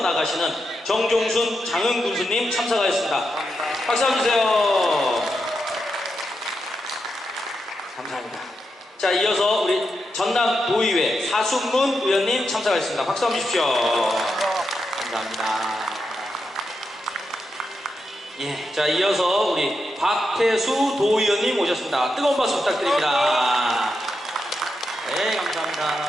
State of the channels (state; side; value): normal; both; correlation 0.86